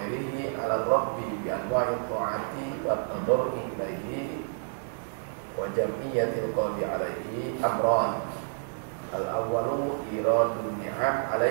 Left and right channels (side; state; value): left; silent; 58 dB below the other